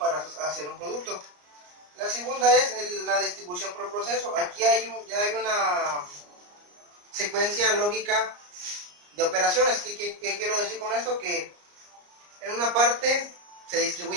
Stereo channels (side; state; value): left; late; 34 ms